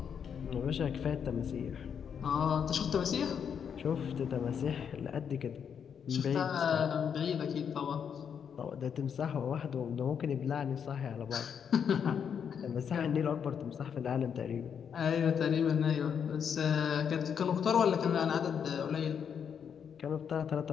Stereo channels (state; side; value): quieter; right; 7.5 dB